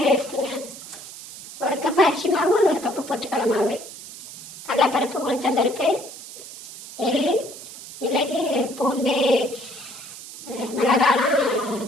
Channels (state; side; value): noise; right; hiss, 14 dB below the sound